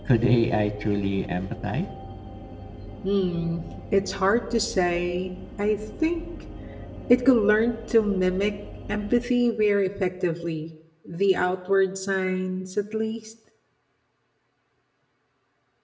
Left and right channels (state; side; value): identical; both; correlation 1.00